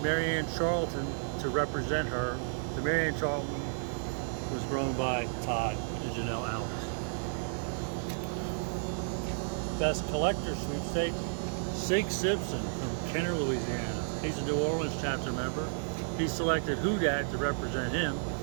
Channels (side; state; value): left; silent; 56 dB below the other